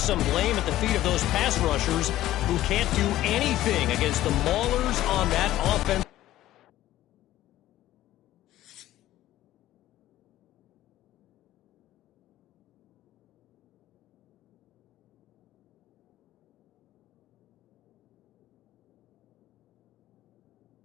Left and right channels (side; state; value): right; quieter; 14.4 dB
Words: blame at the feet of those pass rushers who can't do anything against the maulers on that offense.